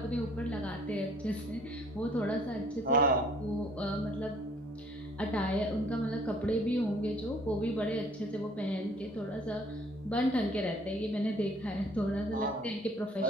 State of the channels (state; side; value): normal; both; correlation 0.57